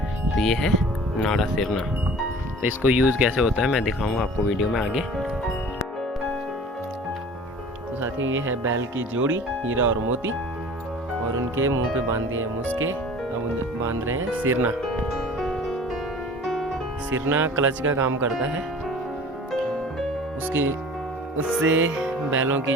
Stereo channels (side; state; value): both; normal; correlation 0.44